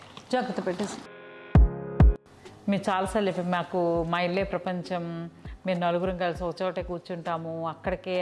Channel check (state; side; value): identical; both; correlation 1.00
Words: జాగ్రత్త పెట్టేసుకో. మీరు చాలాసార్లు చెప్పి మాకు మా ఇల్లే ప్రపంచం, మీరు నలుగురం కలిసి ఒక చోట కూర్చుంటాము, అక్కడికే